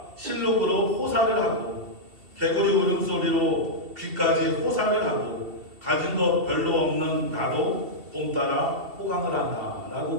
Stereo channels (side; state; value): left; late; 2.7 ms